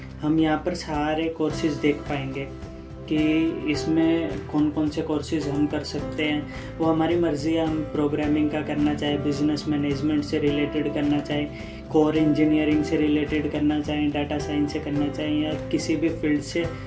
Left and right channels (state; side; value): identical; both; correlation 1.00